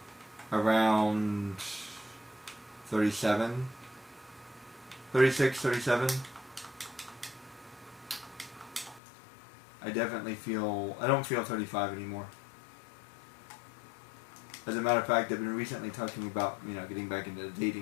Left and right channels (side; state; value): right; drops out; at 9.0 s